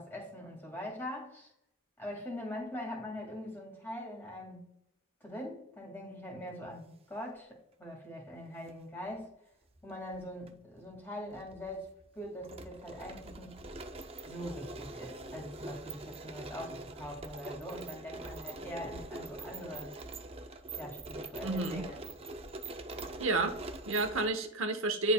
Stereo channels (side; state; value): both; normal; correlation 0.27